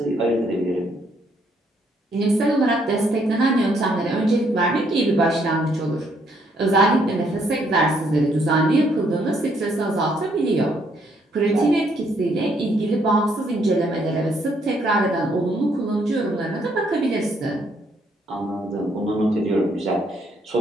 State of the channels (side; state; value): both; normal; correlation 0.70